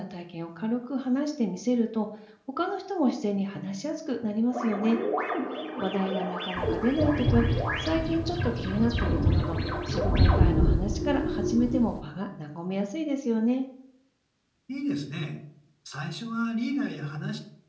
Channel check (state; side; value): identical; both; correlation 1.00